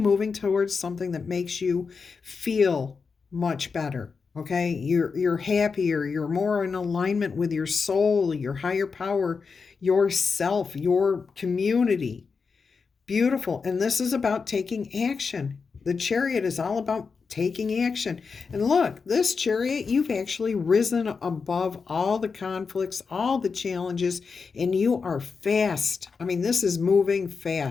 towards something that makes you feel much better. Okay, you're happier, you're more in alignment with your soul, your higher power, yourself, your community. Beautiful. And this is about taking action. The chariot is all about taking action. And look, this chariot, you've actually risen above all the conflicts, all the challenges, and you are fast. I mean, this is moving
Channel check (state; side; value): quieter; right; 5.1 dB